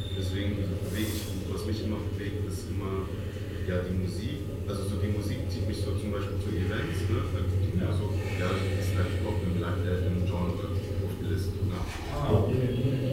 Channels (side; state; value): both; identical; correlation 1.00